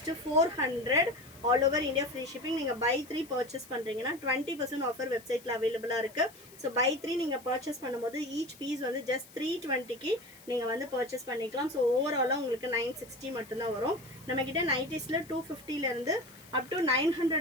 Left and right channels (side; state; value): left; noise; hiss, 22 dB below the sound